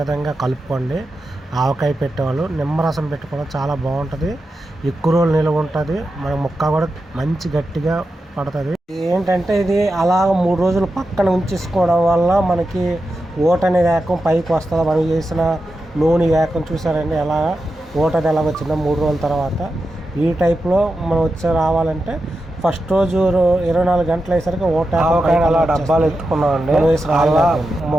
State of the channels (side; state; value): both; normal; correlation 0.89